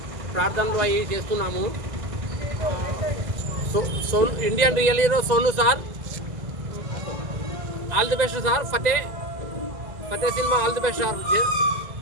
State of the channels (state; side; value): late; left; 2.0 ms